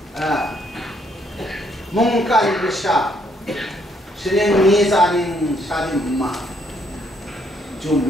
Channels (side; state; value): both; normal; correlation 0.70